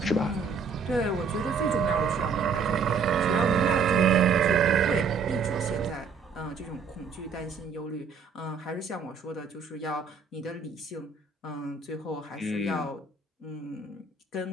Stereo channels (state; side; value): quieter; left; 5.3 dB